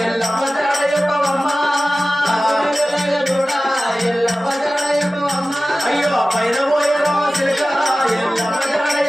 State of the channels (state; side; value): normal; both; correlation 0.96